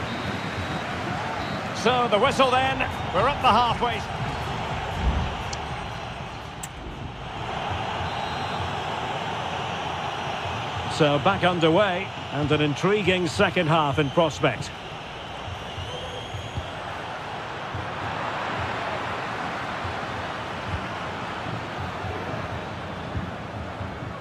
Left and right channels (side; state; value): both; identical; correlation 1.00